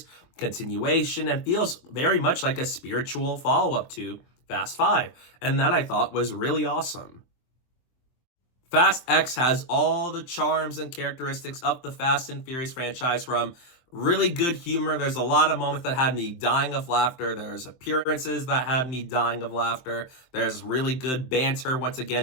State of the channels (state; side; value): late; right; 23 ms